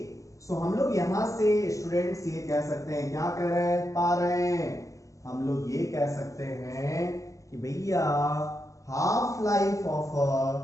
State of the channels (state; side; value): late; right; 0.16 ms